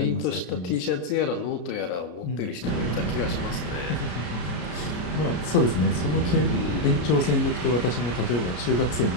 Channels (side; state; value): right; late; 33 ms